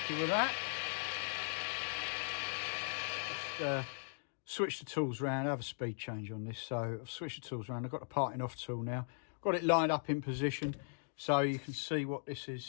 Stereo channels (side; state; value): right; silent; digital silence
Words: with that. Just switch the tools around, have a speed change on this. So I've switched the tools around. I've got the parting off tool now. Got it lined up in position so you can see what this